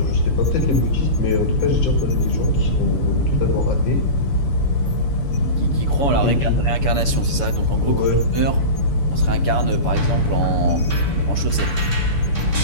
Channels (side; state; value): right; late; 6.9 ms